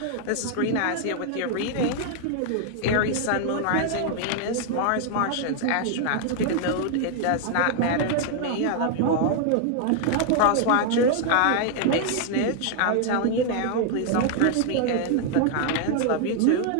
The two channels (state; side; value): different; both; correlation 0.00